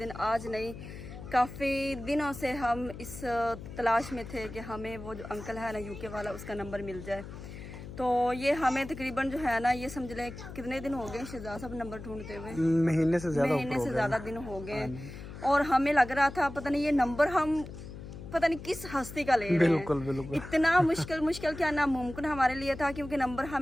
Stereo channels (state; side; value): noise; left; hum, 12 dB below the sound